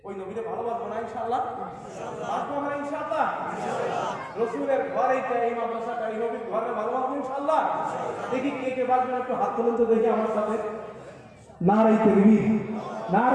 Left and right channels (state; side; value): identical; both; correlation 1.00